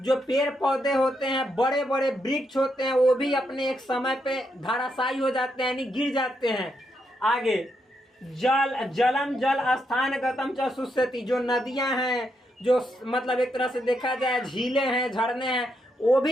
जो पेड़ पौधे होते हैं, बड़े बड़े वृक्ष होते हैं, वो भी अपने एक समय पे धराशायी हो जाते हैं, यानी गिर जाते हैं। आगे जलम जल स्थान गतम च शुष्यति, जो नदियां हैं, जो मतलब एक तरह से देखा जाए झीलें हैं, झरने हैं, वो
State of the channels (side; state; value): both; normal; correlation 0.80